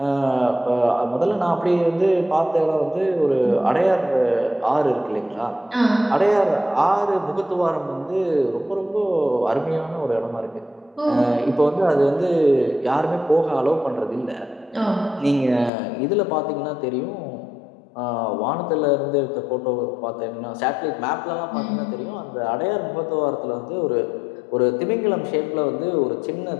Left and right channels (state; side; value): drops out; right; at 15.7 s